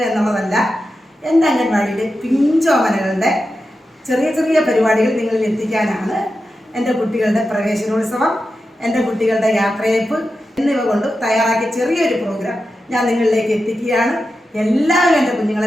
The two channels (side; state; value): both; normal; correlation 0.90